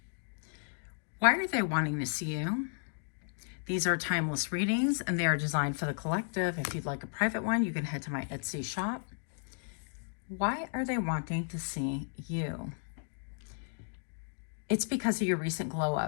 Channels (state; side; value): silent; right; digital silence